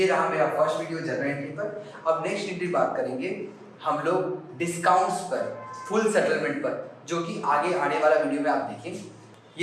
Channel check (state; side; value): identical; both; correlation 1.00